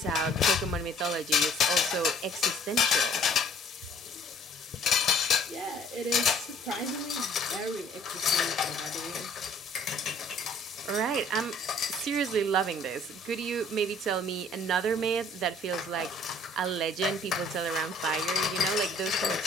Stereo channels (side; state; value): both; normal; correlation 0.56